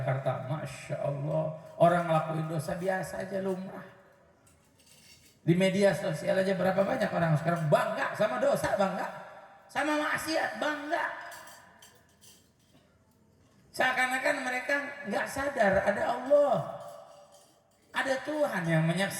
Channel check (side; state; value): both; identical; correlation 1.00